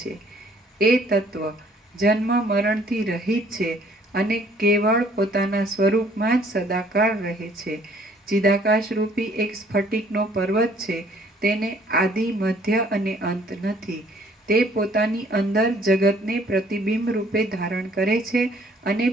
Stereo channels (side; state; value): both; normal; correlation 0.59